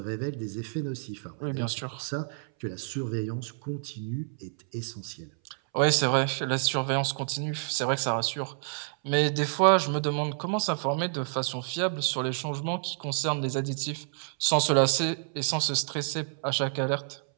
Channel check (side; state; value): left; silent; 59 dB below the other